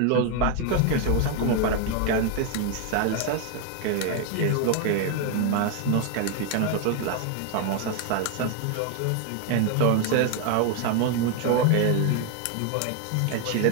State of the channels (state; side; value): different; both; correlation 0.01